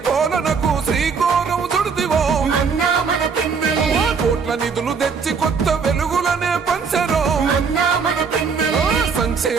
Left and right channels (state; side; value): quieter; left; 5.6 dB